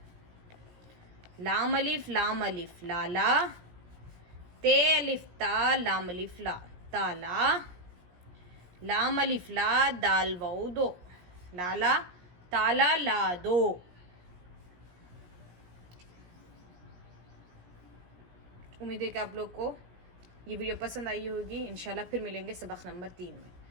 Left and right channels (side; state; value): left; late; 17 ms